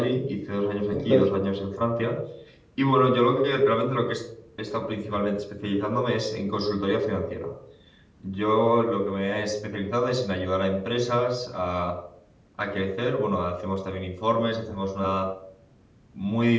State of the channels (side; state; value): both; identical; correlation 1.00